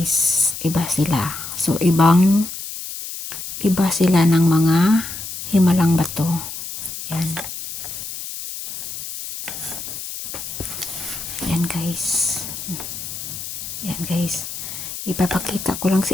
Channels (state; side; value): noise; left; hiss, 8 dB below the sound